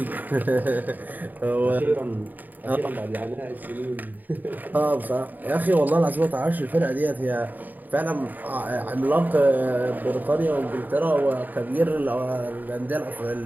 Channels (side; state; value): left; late; 0.086 ms